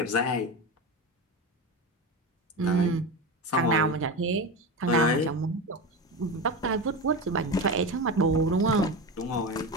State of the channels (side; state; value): both; normal; correlation 0.22